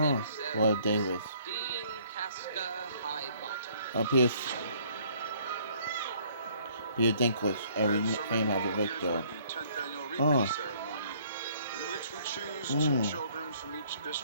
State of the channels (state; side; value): inverted; both; correlation -0.61